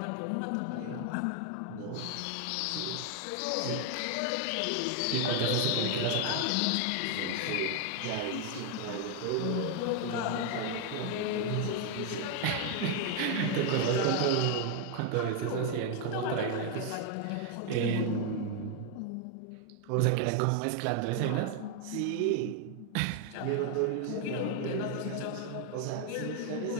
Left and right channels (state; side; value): different; both; correlation 0.01